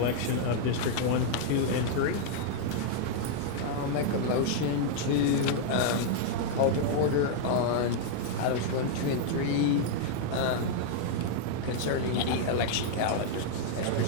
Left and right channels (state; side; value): different; both; correlation -0.01